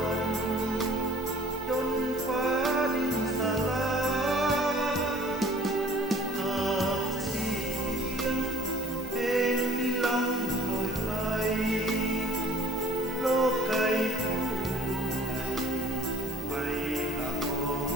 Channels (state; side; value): normal; both; correlation 0.52